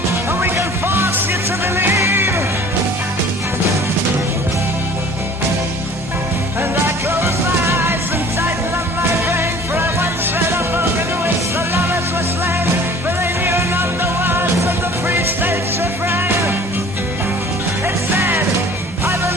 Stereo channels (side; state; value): both; normal; correlation 0.48